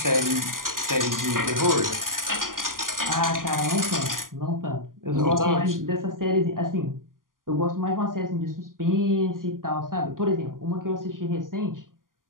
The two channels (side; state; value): left; late; 0.91 ms